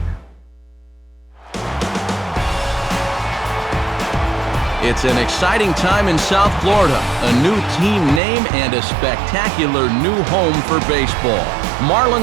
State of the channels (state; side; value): drops out; left; at 8.2 s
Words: It's an exciting time in South Florida. A new team name and a spectacular new home for baseball.